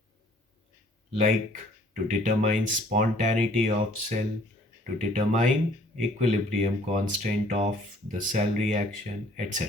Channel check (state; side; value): normal; both; correlation 0.57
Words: like to determine spontaneity of cell, to determine equilibrium constant of the cell reaction,